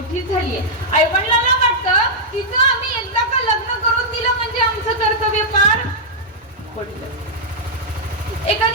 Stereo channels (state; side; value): normal; both; correlation -0.07